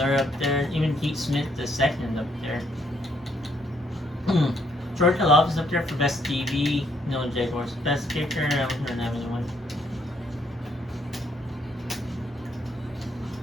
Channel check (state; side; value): normal; both; correlation 0.70